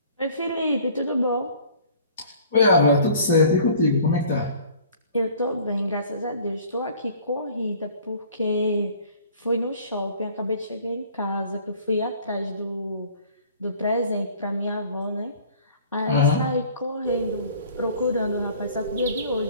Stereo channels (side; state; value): both; inverted; correlation -0.51